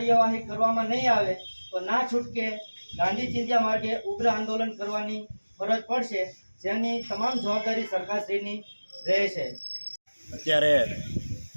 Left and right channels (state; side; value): inverted; both; correlation -1.00